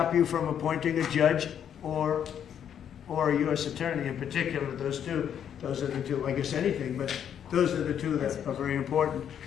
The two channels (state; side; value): quieter; right; 9.0 dB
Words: you from appointing a judge or a U.S. attorney. In particular, those are the two, I guess anything, but those are the two that are very important.